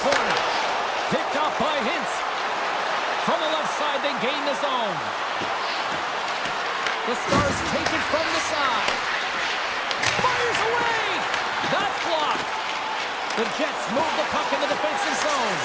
corner. Picked up by Hintz. From the left side, they gain the zone. The Stars take it from the side. Fires away! That's blocked. The Jets move the puck in the defensive zone.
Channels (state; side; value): identical; both; correlation 1.00